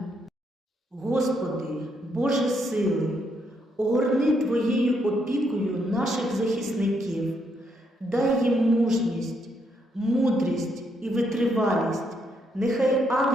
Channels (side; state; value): both; normal; correlation 0.76